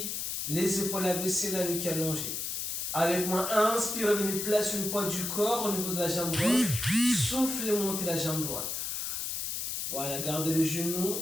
les épaules abaissées, la nuque allongée. Avec moi, inspire, venez placer le poids du corps au niveau de la jambe gauche. Soufflez, montez la jambe droite. Voilà, gardez le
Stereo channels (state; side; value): noise; left; hiss, 2 dB below the sound